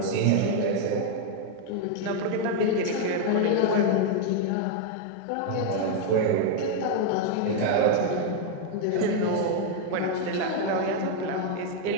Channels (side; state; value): both; different; correlation 0.00